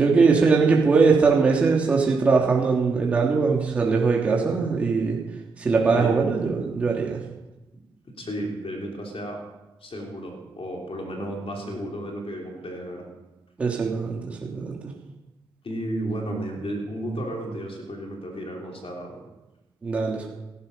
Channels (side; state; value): left; quieter; 4.1 dB